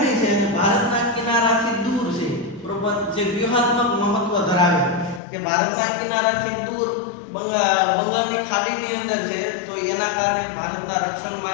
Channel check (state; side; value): drops out; right; at 5.2 s